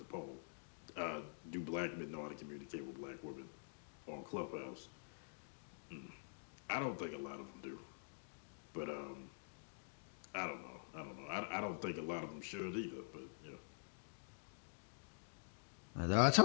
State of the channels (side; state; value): right; silent; digital silence